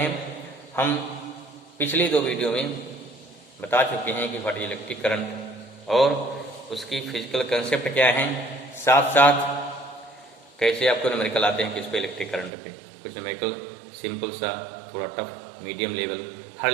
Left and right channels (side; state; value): left; drops out; at 12.5 s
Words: हम पिछली दो वीडियो में बता चुके हैं कि व्हाट इज इलेक्ट्रिक करंट और उसकी फिजिकल कंसेप्ट क्या है, साथ साथ कैसे आपको न्यूमेरिकल आते हैं किस पे, इलेक्ट्रिक करंट पे। कुछ न्यूमेरिकल सिंपल सा, थोड़ा टफ, मीडियम लेवल, हर